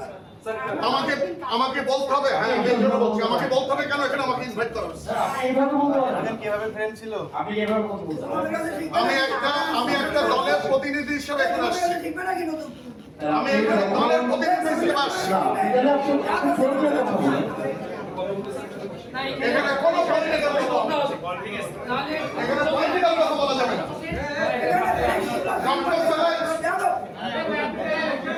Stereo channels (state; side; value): identical; both; correlation 1.00